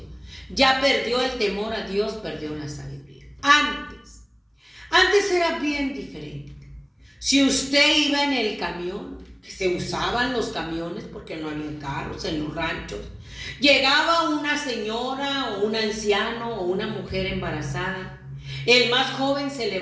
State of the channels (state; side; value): identical; both; correlation 1.00